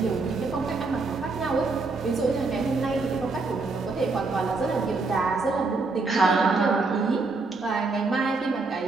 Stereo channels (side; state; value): left; quieter; 3.8 dB